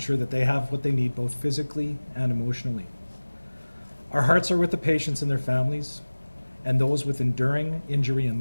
that they have what they need both physically and emotionally. Our hearts are with the patients and their families and those with enduring injury and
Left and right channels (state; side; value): inverted; both; correlation -1.00